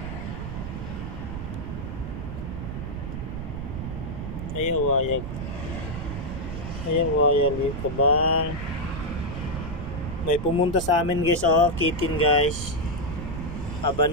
Ayaw wayag. Ayaw wayag ka bang? May pumunta sa amin guys oh, kitten guys.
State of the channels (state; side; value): noise; right; rumble, 6 dB below the sound